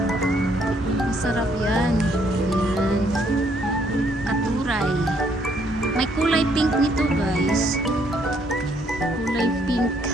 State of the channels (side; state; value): both; normal; correlation 0.68